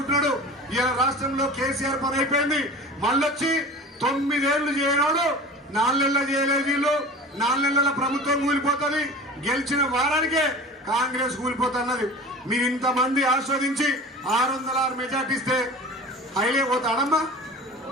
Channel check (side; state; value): both; normal; correlation 0.37